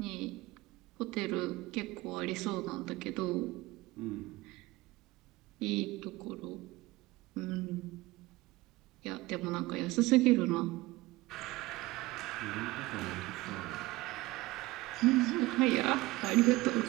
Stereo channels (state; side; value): quieter; left; 20.0 dB